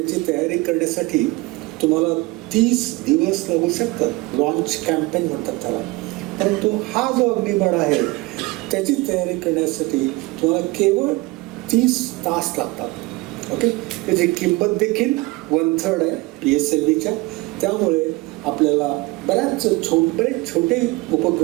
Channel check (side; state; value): left; quieter; 22.3 dB